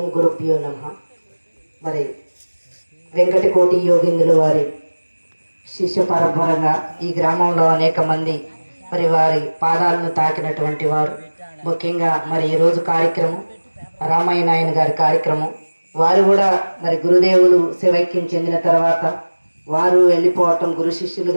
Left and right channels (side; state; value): both; inverted; correlation -1.00